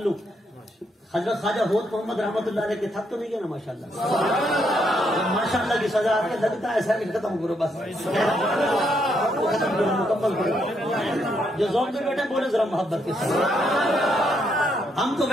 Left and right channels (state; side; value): normal; both; correlation 0.76